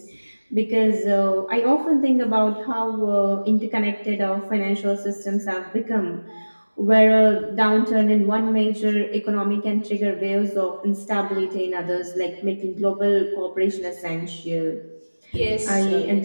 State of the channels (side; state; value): both; inverted; correlation -1.00